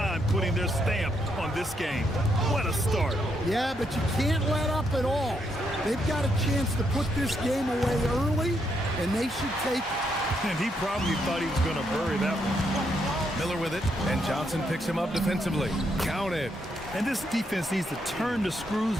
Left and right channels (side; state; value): both; normal; correlation 0.77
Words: putting their stamp on this game. What a start. Yeah, but you can't let up at all. They've got a chance to put this game away early, and they should take it. And he probably thought he was going to bury that one. Miller with it, and Johnson picks him up defensively. Count it. And this defense needs to turn the